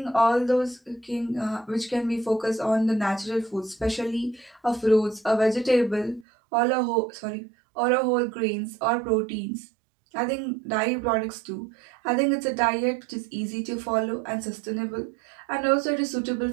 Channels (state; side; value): drops out; left; at 6.2 s